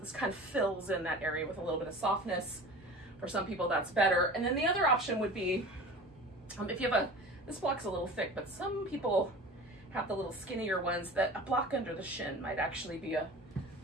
kind of fills in that area with a little bit of softness. For some people, that's better. And then the other option would be, if you have this block's a little thick, but some people have the little skinnier ones that a block under the shin might actually be a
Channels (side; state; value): both; normal; correlation 0.38